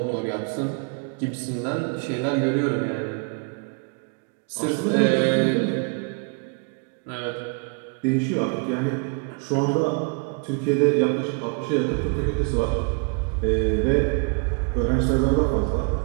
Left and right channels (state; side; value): quieter; left; 35.9 dB